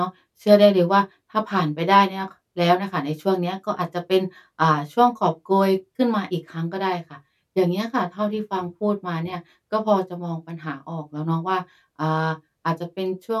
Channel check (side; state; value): both; identical; correlation 1.00